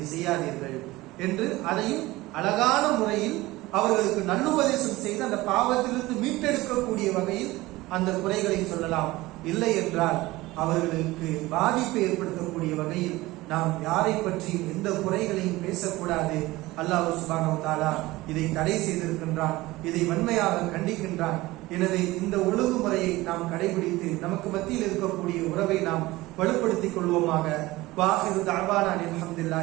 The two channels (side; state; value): left; quieter; 19.3 dB